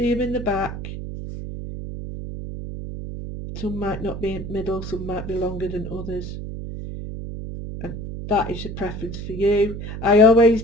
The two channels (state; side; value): noise; right; hum, 8 dB below the sound